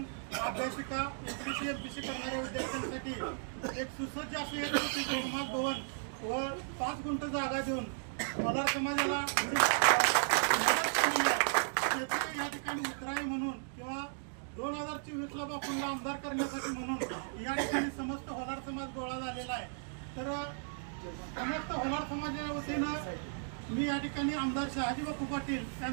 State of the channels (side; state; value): left; silent; digital silence